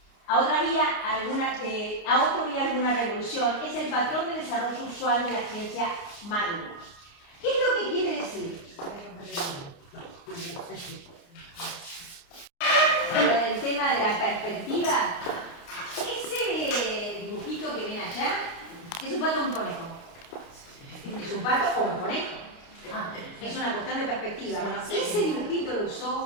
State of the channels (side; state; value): right; late; 29 ms